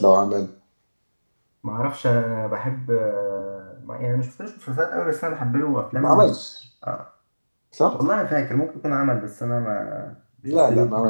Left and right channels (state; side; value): inverted; both; correlation -1.00